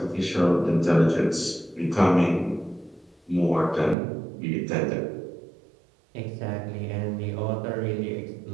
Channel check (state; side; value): drops out; left; at 4.0 s